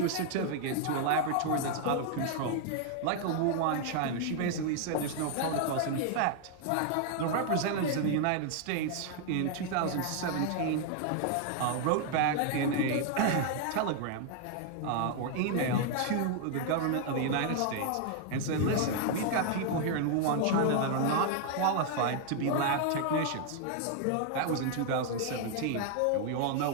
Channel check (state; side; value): different; both; correlation 0.00